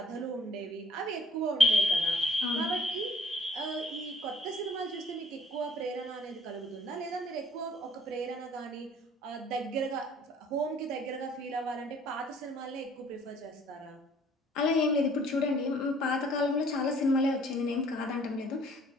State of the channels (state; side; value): normal; both; correlation 0.58